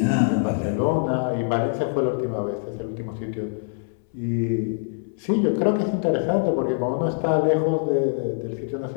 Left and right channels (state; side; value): silent; right; 63 dB below the other